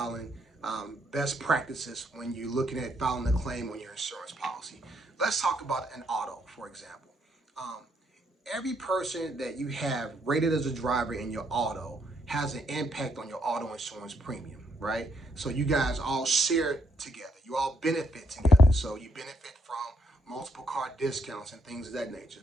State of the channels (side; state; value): both; normal; correlation 0.74